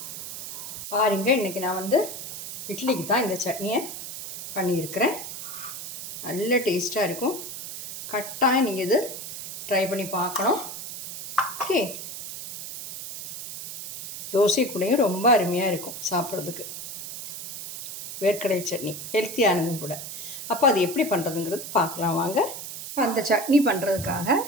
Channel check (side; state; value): right; noise; hiss, 9 dB below the sound